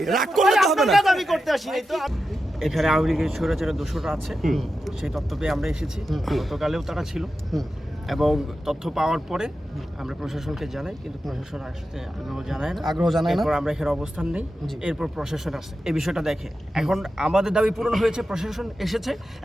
রাগ করলে তো হবে না। এখানে আওয়ামী লীগের স্বৈরাচারের দোষরা আছে, সেই তথ্য পেয়ে আমরা এসেছি। গতকালেও তারা ছিল এবং তথ্য পাওয়ার পরে আমরা প্রশাসনকে জানাই, কিন্তু প্রশাসন আসতে আগ্রহ জানায় না। এরপর আমরা এখানে অবস্থান নেই, এরপর প্রশাসন আসে এই বিষয়টা দেখে। এখন আমাদের দাবি পূরণ হয়েছে, প্রশাসন এসেছে,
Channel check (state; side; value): normal; both; correlation 0.90